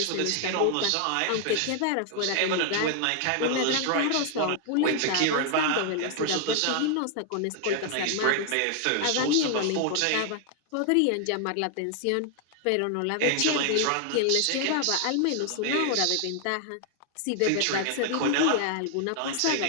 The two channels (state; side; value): different; both; correlation 0.00